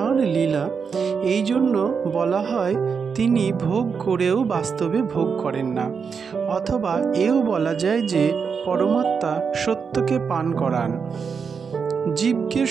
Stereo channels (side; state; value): left; quieter; 5.9 dB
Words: লীলা, এই জন্য বলা হয় তিনি ভোগ করেও বাস্তবে ভোগ করেন না। অথবা এও বলা যায় যে পরমাত্মা সত্যকে পান করান, জীবকে